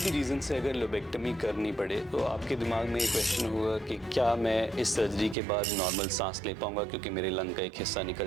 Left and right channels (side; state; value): left; drops out; at 5.4 s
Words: रीज़न से अगर लोबेक्टमी करनी पड़े तो आपके दिमाग में ये क्वेश्चन होगा कि क्या मैं इस सर्जरी के बाद नॉर्मल सांस ले पाऊंगा क्योंकि मेरे लंग का एक हिस्सा